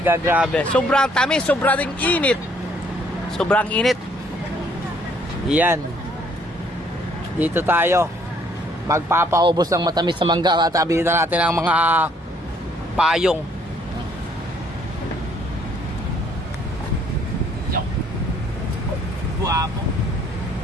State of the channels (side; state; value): both; normal; correlation 0.64